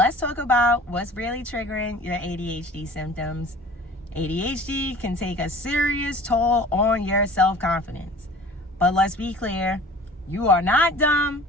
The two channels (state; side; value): normal; both; correlation 0.45